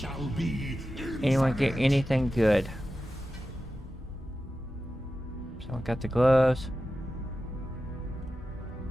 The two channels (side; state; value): both; normal; correlation 0.93